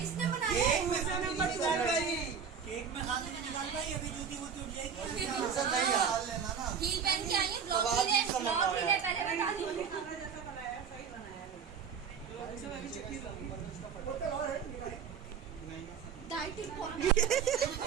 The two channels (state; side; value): quieter; left; 6.9 dB